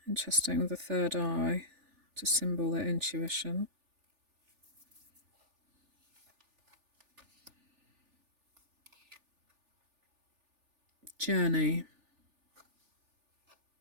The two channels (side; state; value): left; late; 3.4 ms